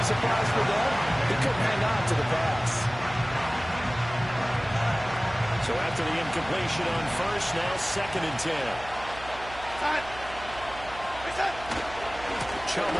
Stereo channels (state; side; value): noise; right; hum, 15 dB below the sound